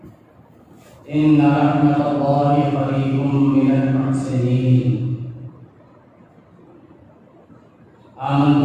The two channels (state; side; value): identical; both; correlation 1.00